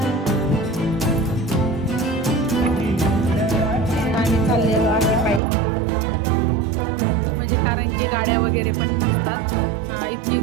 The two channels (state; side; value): drops out; left; at 5.4 s